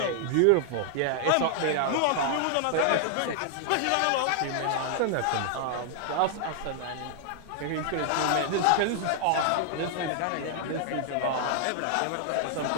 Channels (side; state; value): both; different; correlation 0.00